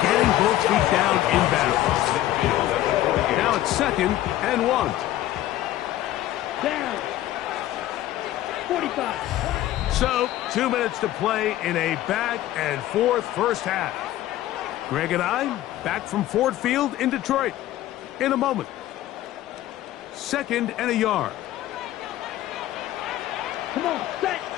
getting both feet down in bounds. Now it's 2nd and 1. Down. 45. So, 2 minutes to play in a back-and-forth first half. Greg and I back from Ford Field in Detroit in a moment. 2nd and a yard. Come on, set.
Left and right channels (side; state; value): right; quieter; 14.1 dB